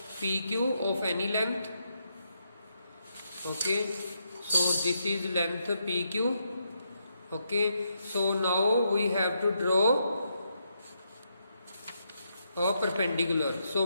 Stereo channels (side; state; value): both; inverted; correlation -0.79